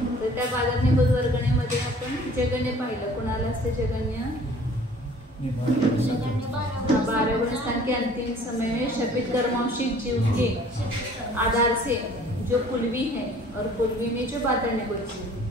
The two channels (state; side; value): normal; both; correlation 0.52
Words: तर त्या बादर निगोद वर्गणेमध्ये आपण जगन्य पाहिलं। कुणाला असते जगन्य? 12 गुण स्थान के अंतिम समय में शपित कर्मांशिक जीव के आधार से जो पुलवी है और पुलवी में जो बादर निगोद जीव